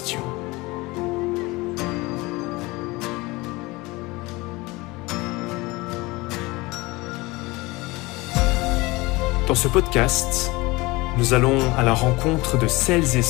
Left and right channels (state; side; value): quieter; right; 22.5 dB